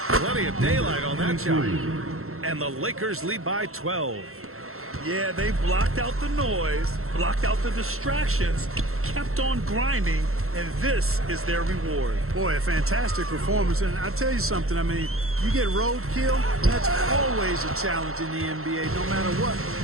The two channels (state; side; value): late; left; 0.62 ms